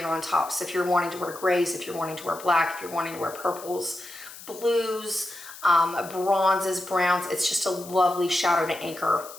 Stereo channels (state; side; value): noise; left; hiss, 16 dB below the sound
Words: on top. So if you're wanting to wear grays, if you're wanting to wear black, if you're wanting to wear purples, blues, bronzes, browns, it's just a lovely shadow to anchor